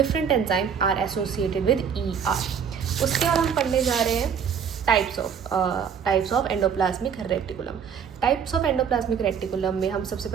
enzyme are associated with ER। उसके बाद हम पढ़ने जा रहे हैं types of endoplasmic reticulum. Types of endoplasmic reticulum में हम सबसे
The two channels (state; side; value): quieter; left; 7.3 dB